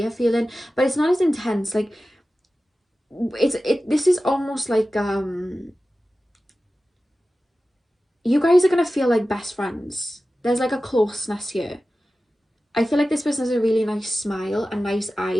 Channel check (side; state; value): both; normal; correlation 0.95